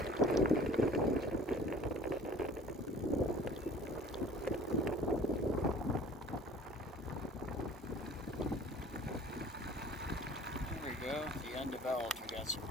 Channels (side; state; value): both; normal; correlation 0.48